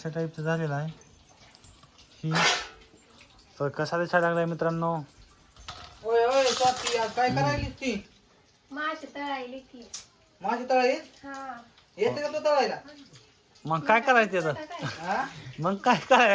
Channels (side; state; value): both; identical; correlation 1.00